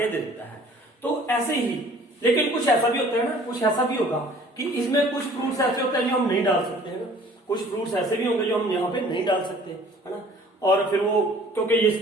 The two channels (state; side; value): normal; both; correlation 0.52